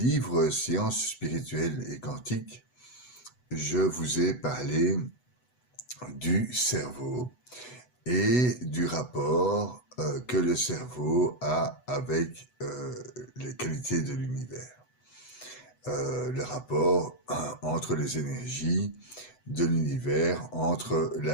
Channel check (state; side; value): late; right; 8.0 ms